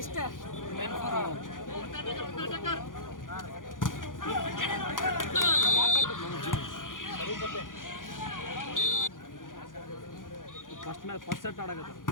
first set ಆಡಕತ್ತ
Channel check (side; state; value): right; late; 0.89 ms